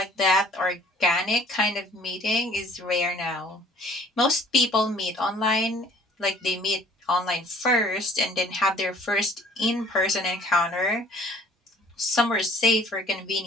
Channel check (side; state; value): both; normal; correlation 0.54